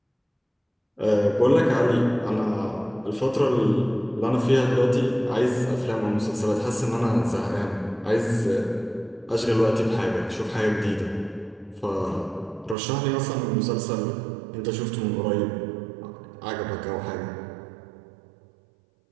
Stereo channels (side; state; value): left; drops out; at 12.8 s